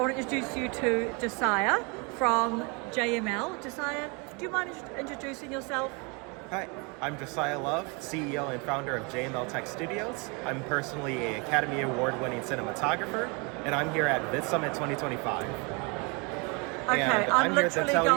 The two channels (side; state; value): left; quieter; 30.5 dB